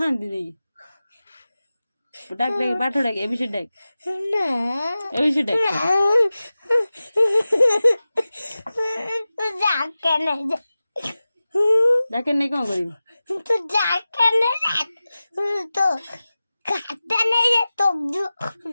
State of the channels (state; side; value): inverted; both; correlation -0.96